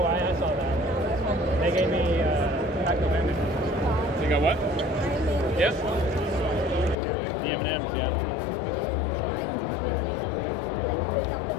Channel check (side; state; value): right; drops out; at 7.0 s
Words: I saw that. They gave me active image. You got what? Yes. The M&Ms, yeah.